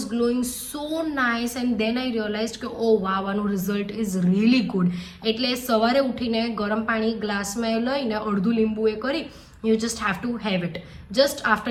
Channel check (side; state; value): both; identical; correlation 1.00